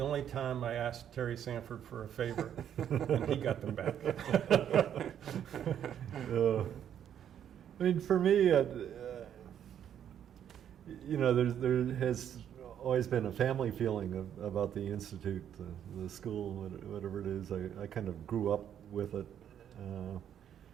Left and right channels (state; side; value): quieter; left; 9.6 dB